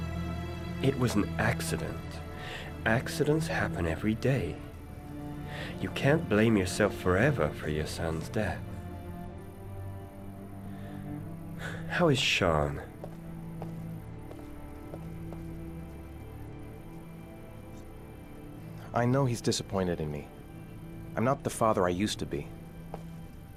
It was an accident. Accidents happen every day. You can't blame yourself forever for your son's death. How is Sean? I know he's disappointed in me. I'm not the father I used to be.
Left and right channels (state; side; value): identical; both; correlation 1.00